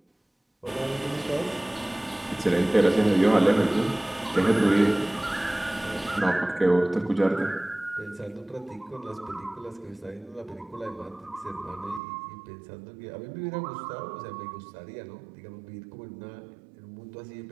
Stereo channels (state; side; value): drops out; left; at 12.0 s